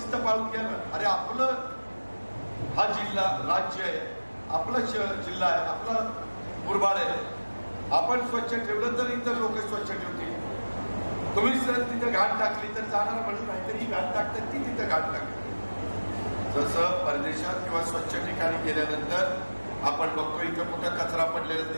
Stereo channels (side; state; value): both; inverted; correlation -1.00